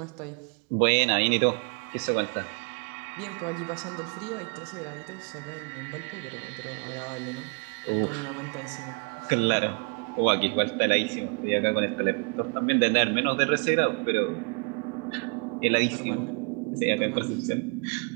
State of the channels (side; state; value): left; quieter; 35.0 dB